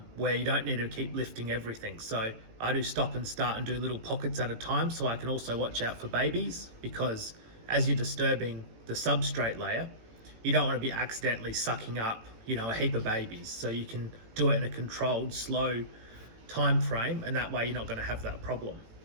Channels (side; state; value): left; late; 18 ms